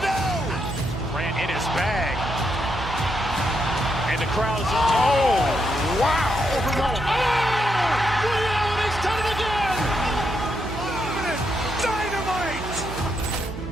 Ran in his bag. And the crowd is, oh, wow. He's done it again. Dynamite.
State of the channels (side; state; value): right; noise; hum, 8 dB below the sound